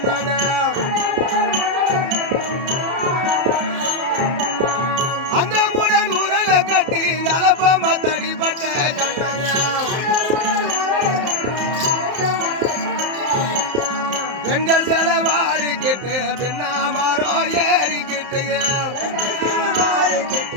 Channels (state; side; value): late; left; 31 ms